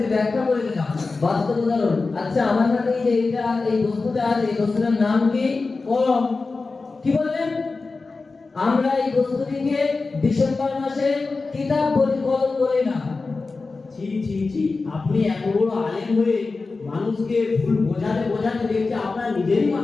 ব্যাখ্যা করে দিলাম, বাস্তব উদাহরণ। আচ্ছা আমার হাতে এই যে এটা এই বস্তুটা আছে, এই বস্তুটার নাম কি? কলম। কি বললেন? আমরা এই বস্তুটিকে ডিসেম্বর মাসে কিতাব বলি, কলম বলি না। ছি ছি ছি, আপনি এত বড় আলেম হয়ে মানুষকে ভুল বোঝাতে বোঝাতে দেখতে আপনার নিজেরই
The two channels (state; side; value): quieter; right; 3.9 dB